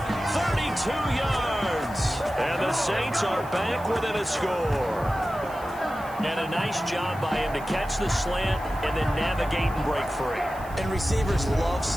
32 yards. And the Saints are back within a score. And a nice job by him to catch the slant and then navigate and break free. And receivers love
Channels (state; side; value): noise; right; hiss, 22 dB below the sound